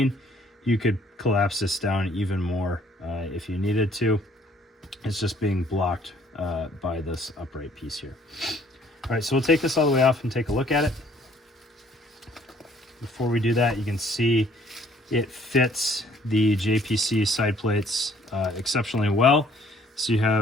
you could collapse this down even more if you needed to. It's just being blocked by this upright piece here. All right, so we'll take this all the way off and take a look at it. Before we do that, you can see it fits the JPC side plates exceptionally well. So you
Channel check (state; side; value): normal; both; correlation 0.60